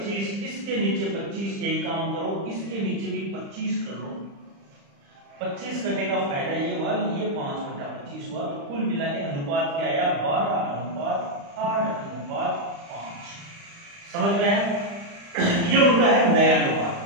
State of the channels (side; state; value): left; late; 35 ms